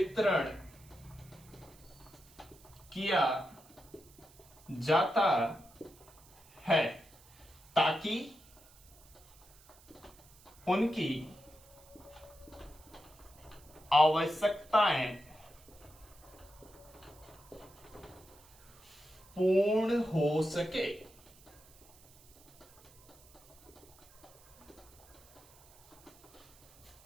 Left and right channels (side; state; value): right; noise; hiss, 25 dB below the sound